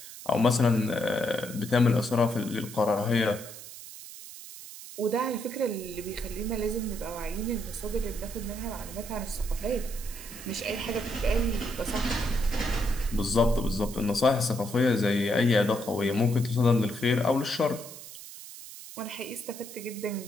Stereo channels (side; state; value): right; noise; hiss, 14 dB below the sound